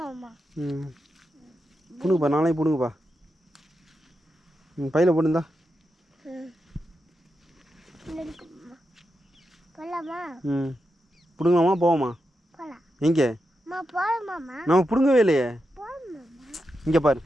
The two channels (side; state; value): both; normal; correlation 0.87